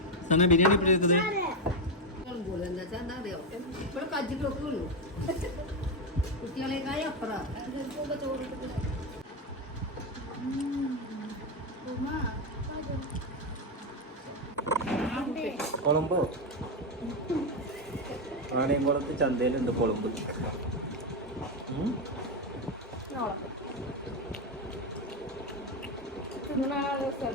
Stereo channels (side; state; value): both; normal; correlation 0.09